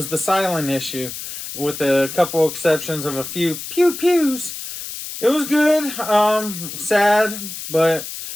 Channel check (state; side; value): noise; left; hiss, 9 dB below the sound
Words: the silent issue, with a couple exceptions of a few pew-pews. It was good. Sad, but